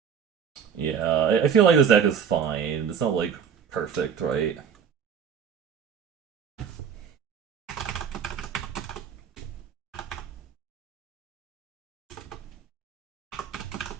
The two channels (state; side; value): quieter; left; 7.5 dB